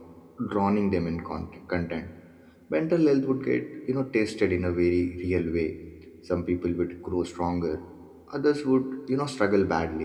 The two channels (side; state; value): both; identical; correlation 1.00